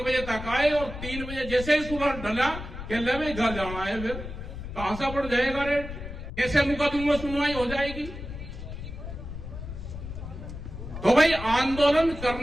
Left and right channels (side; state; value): left; noise; rumble, 9 dB below the sound